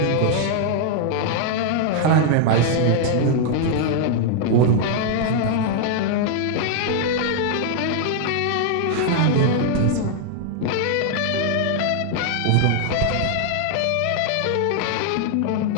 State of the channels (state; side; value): different; both; correlation 0.00